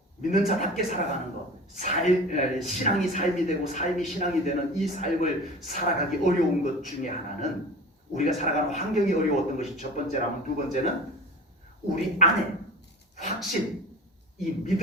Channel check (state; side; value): normal; both; correlation 0.36